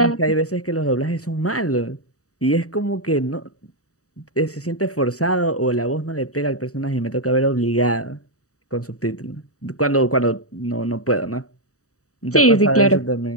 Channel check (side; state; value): right; late; 0.66 ms